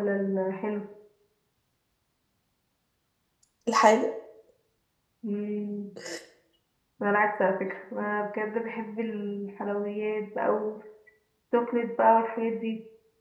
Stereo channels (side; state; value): both; identical; correlation 1.00